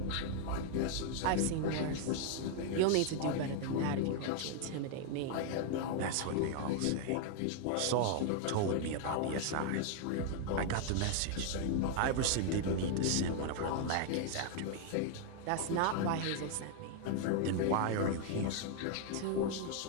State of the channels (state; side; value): different; both; correlation 0.00